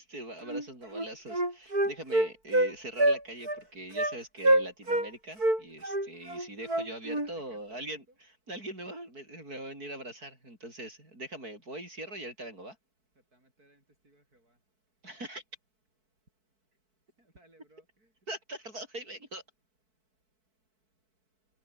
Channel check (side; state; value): left; late; 4.6 ms